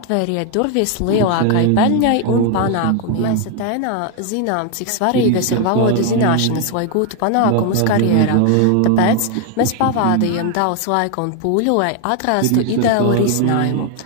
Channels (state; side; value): different; both; correlation 0.01